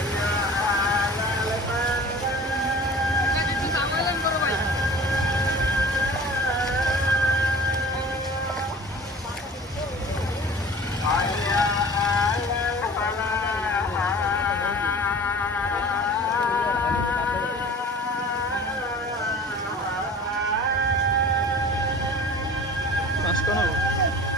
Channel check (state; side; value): normal; both; correlation 0.42